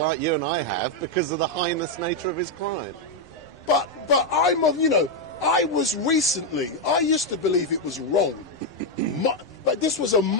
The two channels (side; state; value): right; noise; rumble, 28 dB below the sound